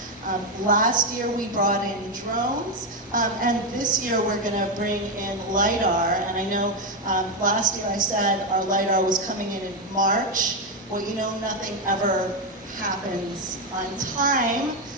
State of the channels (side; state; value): both; normal; correlation 0.07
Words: Last year we brought in drones, and this year we're going to bring in LiDAR. And I know last year I said our LiDAR was coming in March. Well, you know, nothing ever happens on time.